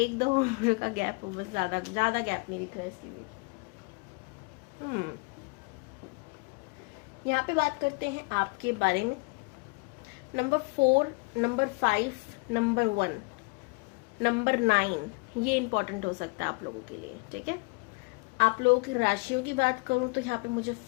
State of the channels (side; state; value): right; quieter; 28.7 dB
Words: उम्र का गैप हो, बस ज़्यादा गैप नहीं दिख रहा है इसके बीच। यहाँ पे बात करते हैं आपके बारे में। नंबर 4, नंबर 5, नंबर 1, नंबर 9, ये इंपॉर्टेंट हो सकता है आप लोगों के लिए, ठीक है। आप लोगों की राशियों की बात करूं तो यहाँ पे मुझे